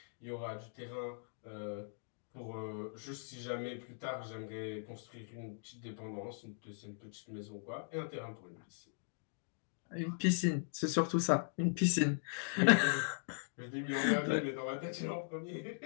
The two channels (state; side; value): silent; right; digital silence